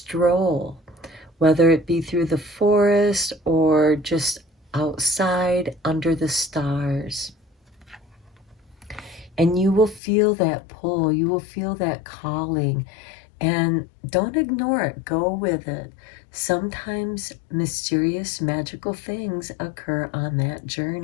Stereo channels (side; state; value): right; drops out; at 10.0 s